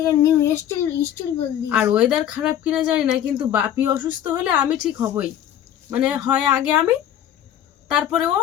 গিয়ে নিউ স্টাইল বললি। আর ওয়েদার খারাপ কিনা জানি না, কিন্তু বাপি অসুস্থ হলে আমি ঠিক হবই। মানে হয় আগে আমি, তারপরে ও,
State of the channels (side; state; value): right; quieter; 10.7 dB